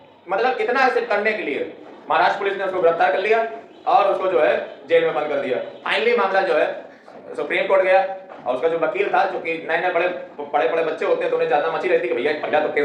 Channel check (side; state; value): both; identical; correlation 1.00